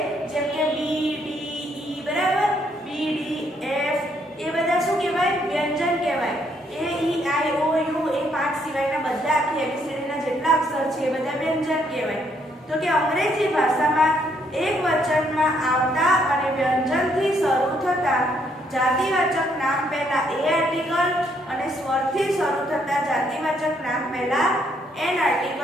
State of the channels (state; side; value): normal; both; correlation 0.71